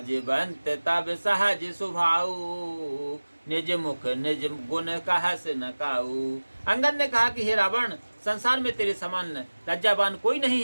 तब सहज स्वभाव, निज मुख निज गुण कहस न काऊ। अंगद ने कहा कि हे रावण, संसार में तेरे समान लज्जावान कोई नहीं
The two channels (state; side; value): inverted; both; correlation -1.00